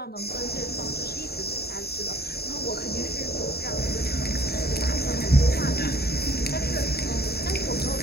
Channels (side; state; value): right; late; 0.46 ms